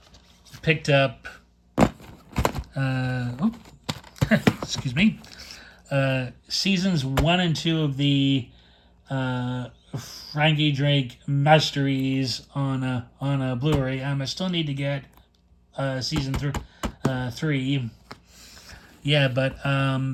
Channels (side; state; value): both; identical; correlation 1.00